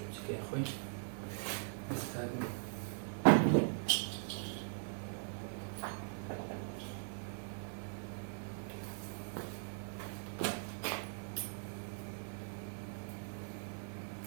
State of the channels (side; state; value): left; silent; 51 dB below the other